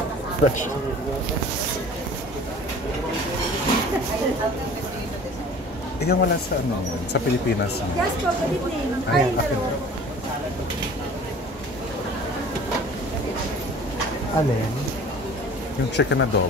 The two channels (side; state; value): both; normal; correlation 0.46